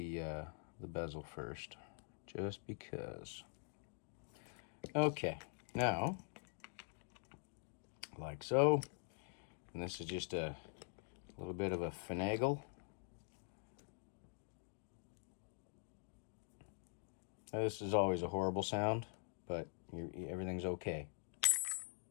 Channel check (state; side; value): silent; right; digital silence